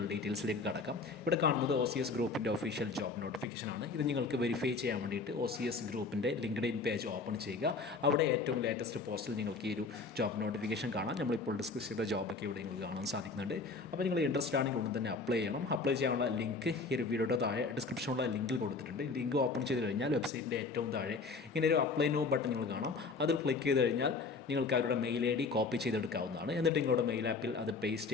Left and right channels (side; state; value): right; quieter; 4.3 dB